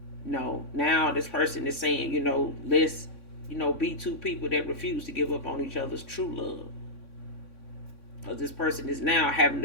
No, now this person is saying, let's, be two people that refuse to give up on each other's true love. Because this person is now having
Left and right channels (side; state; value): right; late; 3.6 ms